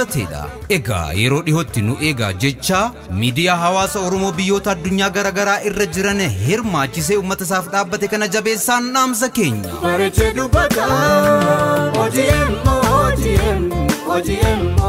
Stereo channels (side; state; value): both; identical; correlation 1.00